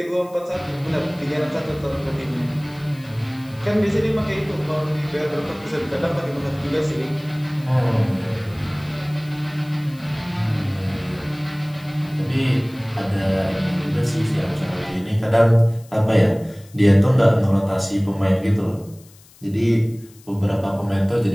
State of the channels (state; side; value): noise; left; hiss, 26 dB below the sound